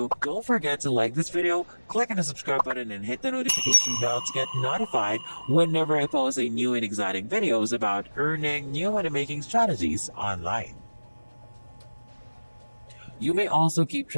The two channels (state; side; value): inverted; both; correlation -1.00